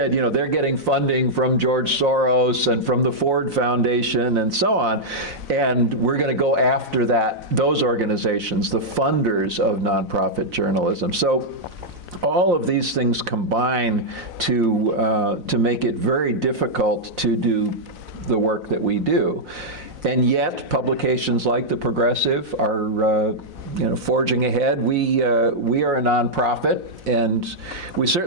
you know, they're getting funding from George Soros and from the Ford Foundation and so on, and we're going to go after those organizations, the funders of nonprofit journalism. So all of these things combine to make it very difficult to do the work that we do. And yet, publications like The Progressive are forging ahead. We are a nonprofit, and we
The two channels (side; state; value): left; late; 4.0 ms